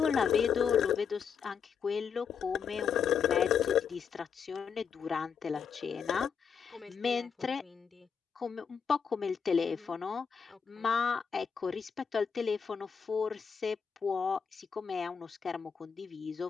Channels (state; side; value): quieter; right; 6.6 dB